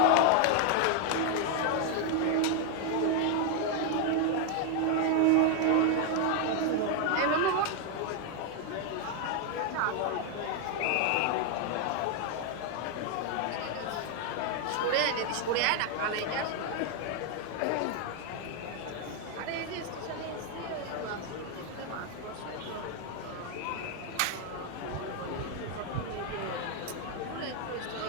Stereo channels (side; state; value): both; different; correlation 0.01